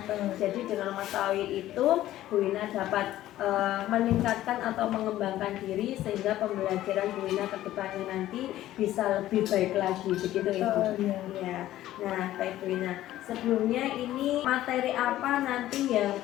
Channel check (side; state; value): right; quieter; 14.1 dB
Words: Jadi dengan mengetahui itu, Bu Wina dapat meningkatkan atau mengembangkan diri sehingga pembelajaran Bu Wina ke depannya nanti bisa lebih baik lagi, begitu ya Bu? Ya. Nah, baik Bu Wina, sebelumnya ini materi apa nanti yang